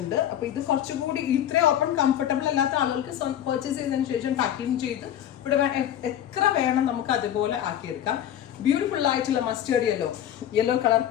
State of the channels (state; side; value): quieter; right; 10.8 dB